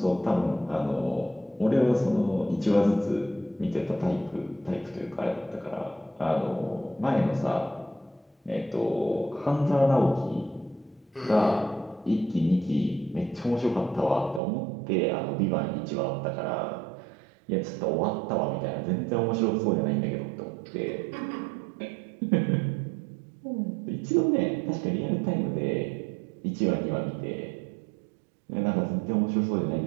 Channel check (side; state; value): left; drops out; at 14.4 s